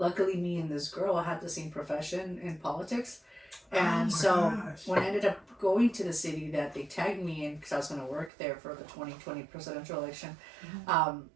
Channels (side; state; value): left; drops out; at 8.3 s